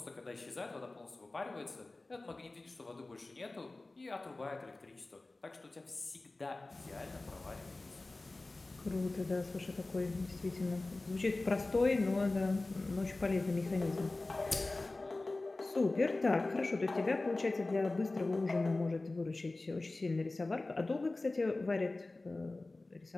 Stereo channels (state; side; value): quieter; right; 3.1 dB